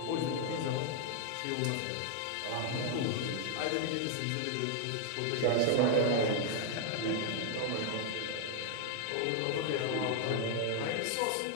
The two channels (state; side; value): different; both; correlation 0.00